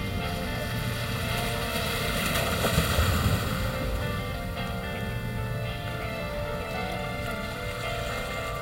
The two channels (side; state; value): both; identical; correlation 1.00